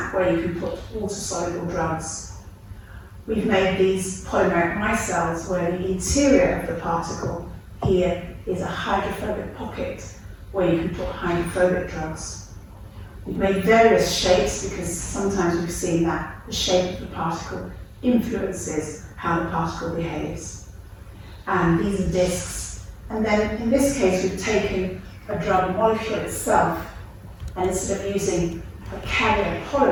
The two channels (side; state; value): both; identical; correlation 1.00